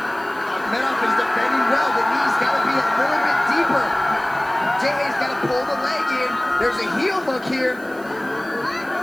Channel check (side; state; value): right; noise; hiss, 23 dB below the sound